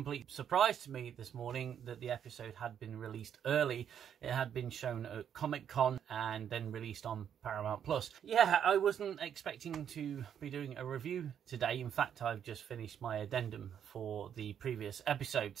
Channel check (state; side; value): quieter; left; 8.8 dB